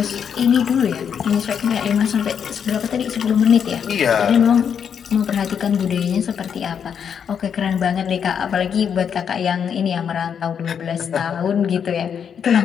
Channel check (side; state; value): right; quieter; 7.6 dB